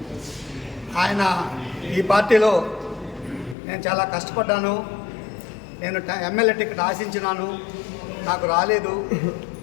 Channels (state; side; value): drops out; right; at 3.6 s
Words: ఆయన ఈ పార్టీలో నేను చాలా కష్టపడ్డాను, నేను ఎమ్మెల్యే టికెట్ ఆశించినాను, నాకు రాలేదు,